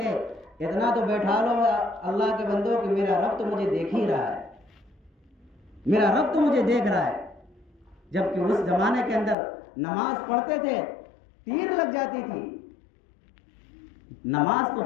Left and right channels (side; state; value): right; drops out; at 9.3 s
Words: اتنا تو بیٹھا لو اللہ کے بندوں کہ میرا رب تو مجھے دیکھ ہی رہا ہے، میرا رب تو مجھے دیکھ رہا ہے۔ جبکہ اس زمانے کے اندر نماز پڑھتے تھے، تیر لگ جاتی تھی، نماز